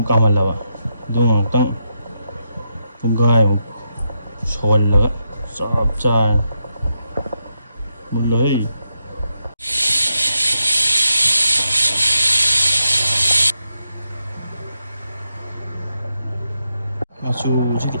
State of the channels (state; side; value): inverted; both; correlation -0.83